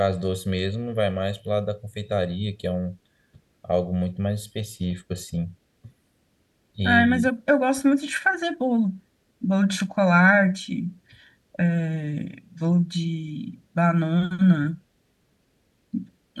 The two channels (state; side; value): identical; both; correlation 1.00